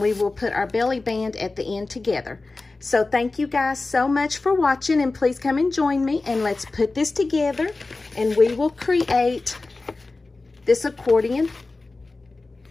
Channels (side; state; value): right; quieter; 3.4 dB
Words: will put our belly band at the end together. So thank you guys so much for watching, and please come and join me, and let's put this together, and we will create this accordion